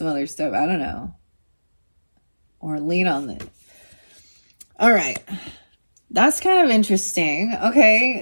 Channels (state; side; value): inverted; both; correlation -1.00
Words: other stuff. I don't know. Or lean on it. All right. That's kind of interesting.